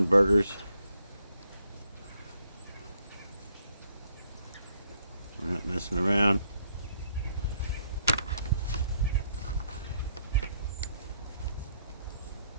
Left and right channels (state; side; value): inverted; both; correlation -0.72